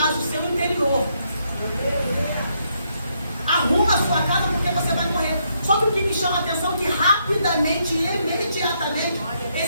o seu interior. Arruma a sua casa porque você vai morrer. Só que o que me chama a atenção é que rapidamente e imediatamente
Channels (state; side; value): inverted; both; correlation -0.76